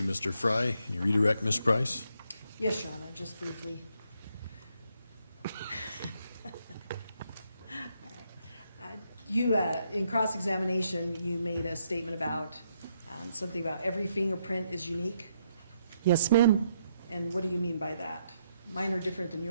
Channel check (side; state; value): both; inverted; correlation -0.76